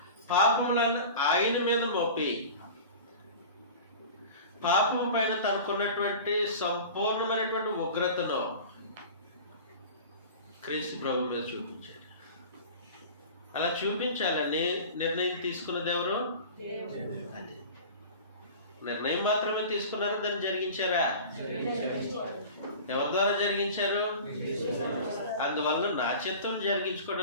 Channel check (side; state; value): both; inverted; correlation -0.37